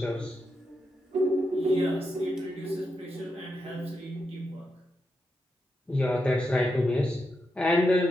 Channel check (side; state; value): both; normal; correlation 0.85